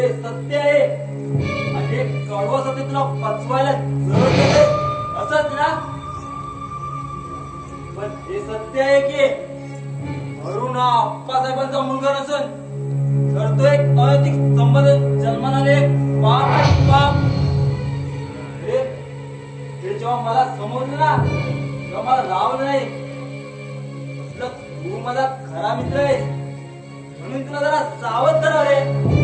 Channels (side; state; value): both; identical; correlation 1.00